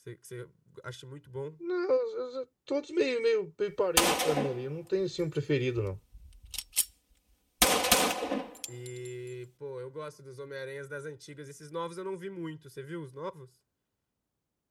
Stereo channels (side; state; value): both; identical; correlation 1.00